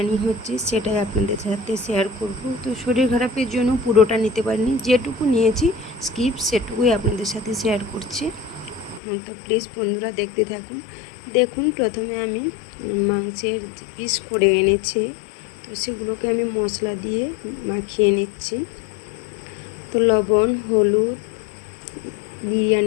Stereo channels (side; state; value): right; drops out; at 9.0 s